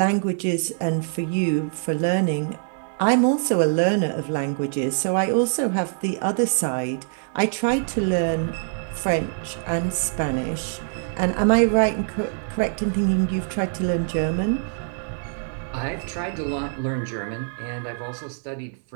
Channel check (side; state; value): left; silent; digital silence